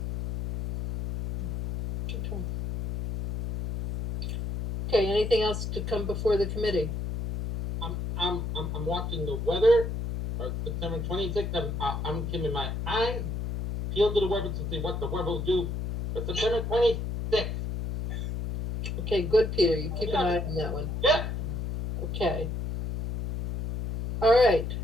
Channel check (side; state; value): left; noise; hum, 3 dB below the sound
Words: Okay, anything else to come before the committee? I'm watching the weather, or September 26th, I'm keeping my eyes peeled to the weather to see what the weather will do, but September 26th. Okay, good, Peter, you keep an eye on that one. Yeah. Okay. All right,